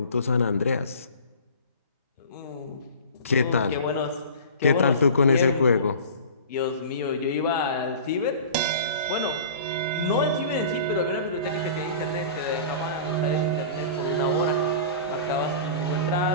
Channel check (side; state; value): both; inverted; correlation -0.39